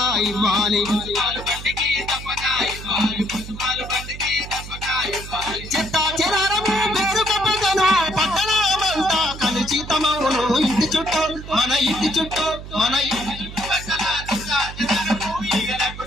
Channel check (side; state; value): right; noise; hum, 12 dB below the sound